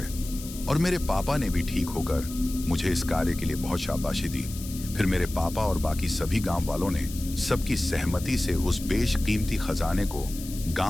और मेरे पापा ने भी ठीक होकर मुझे इस कार्य के लिए बहुत शाबाशी दी। फिर मेरे पापा और बाकी सभी गांव वालों ने सबकी सहमति से उस बेशकीमती खजाने को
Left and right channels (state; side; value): noise; left; hiss, 13 dB below the sound